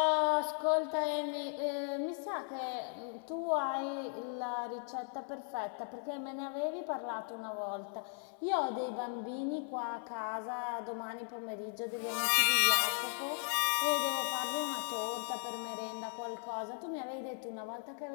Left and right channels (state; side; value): silent; right; 53 dB below the other